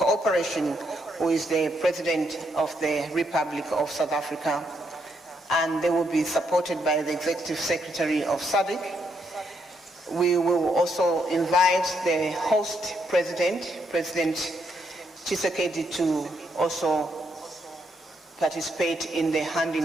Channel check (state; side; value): normal; both; correlation 0.77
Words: who is the President of the Republic of South Africa. And they will be supported by the Executive Secretary of SADC. We will also invite the host president, President Tshisekedi, to also participate in the